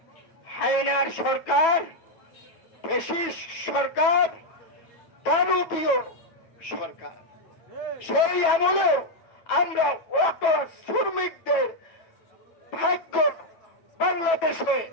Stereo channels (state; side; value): late; right; 9.1 ms